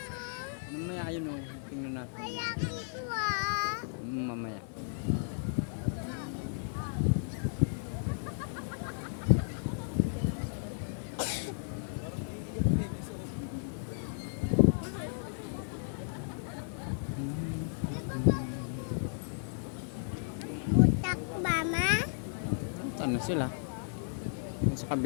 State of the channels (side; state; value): right; silent; 55 dB below the other